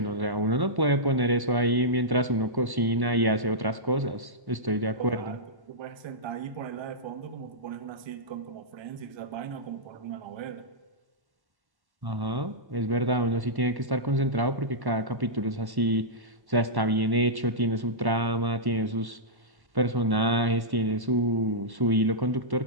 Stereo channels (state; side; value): late; left; 1.1 ms